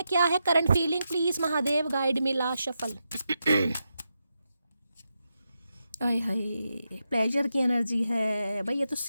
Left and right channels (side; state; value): both; inverted; correlation -0.87